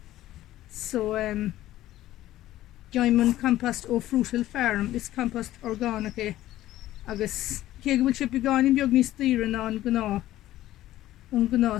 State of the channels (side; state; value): right; quieter; 14.5 dB